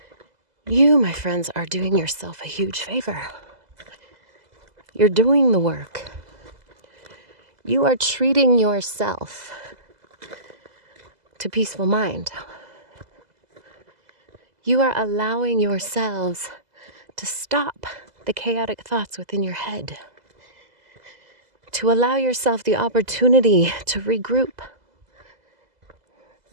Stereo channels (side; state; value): left; late; 2.0 ms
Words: you, my friends, are doing yourself a huge favor. You're doing the work. You are treating yourself to peaceful mind. You are allowing yourselves to stop the chaotic thoughts within your head, to allow yourself the opportunity to regroup.